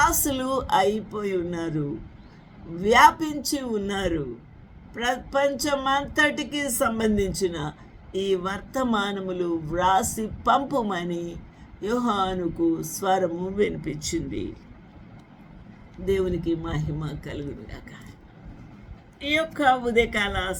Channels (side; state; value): both; identical; correlation 1.00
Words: అయిపోయి ఉన్నారు, వ్యాపించి ఉన్నారు. ప్రపంచమంతటికి సంబంధించిన ఈ వర్తమానములు వ్రాసి పంపుమని యోహానుకు స్వరము వినిపించింది. దేవునికి మహిమ కలుగునుగాక. ఈ యొక్క ఉదయకాల